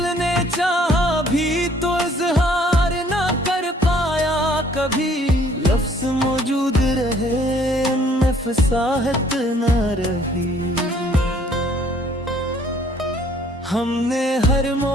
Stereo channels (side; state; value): both; normal; correlation 0.60